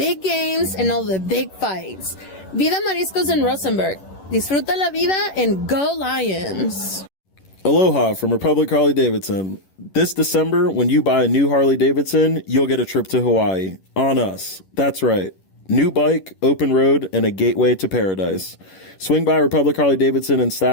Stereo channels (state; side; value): late; right; 11 ms